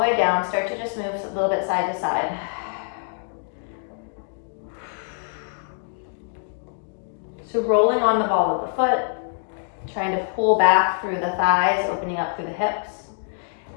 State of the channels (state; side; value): silent; right; digital silence